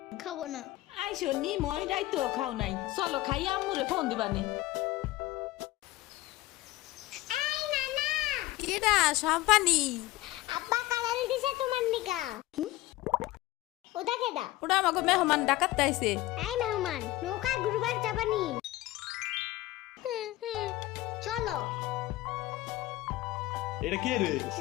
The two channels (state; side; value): quieter; right; 17.5 dB